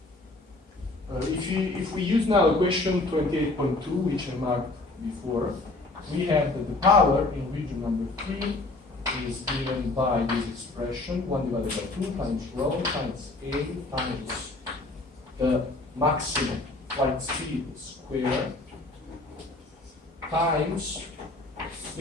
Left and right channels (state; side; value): quieter; right; 3.0 dB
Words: If we use now equation 28.2, which I marked before, we have that the power in region number 3 is given by this expression, 1 divided by 2 times rho times A times the maximum flight speed square times